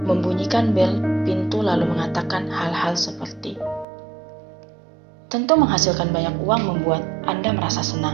membunyikan bel pintu lalu mengatakan hal-hal seperti, tentu menghasilkan banyak uang membuat Anda merasa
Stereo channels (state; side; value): drops out; left; at 3.9 s